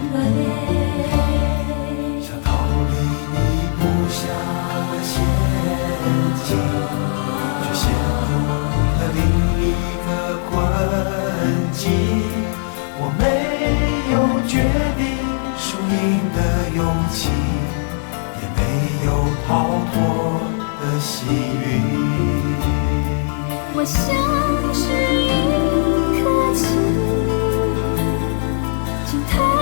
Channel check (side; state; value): right; silent; digital silence